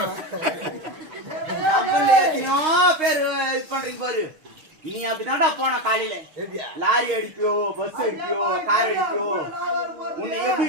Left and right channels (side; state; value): left; late; 6.5 ms